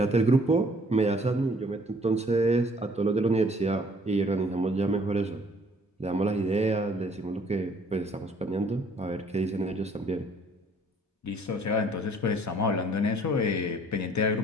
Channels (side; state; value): both; normal; correlation 0.59